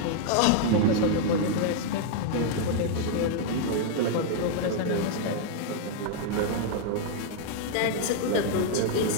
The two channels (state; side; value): different; both; correlation -0.01